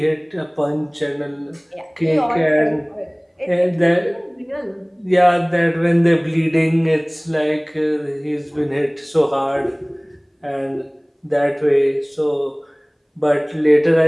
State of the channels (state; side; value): identical; both; correlation 1.00